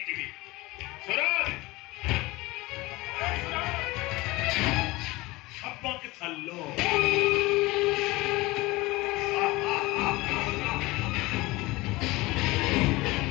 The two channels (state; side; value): quieter; right; 21.3 dB